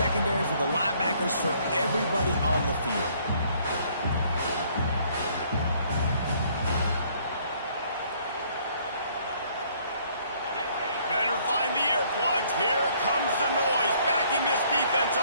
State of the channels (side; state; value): both; inverted; correlation -0.63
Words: for the linebackers, for everybody on the field. Better find the earplugs. Here comes the noise, backing this defense